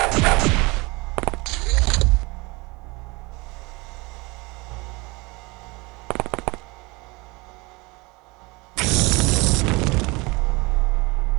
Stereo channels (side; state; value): left; quieter; 25.2 dB